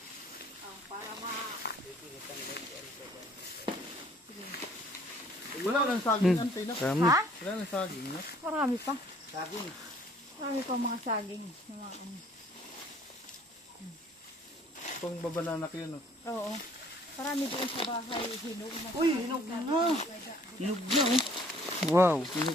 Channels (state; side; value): normal; both; correlation 0.58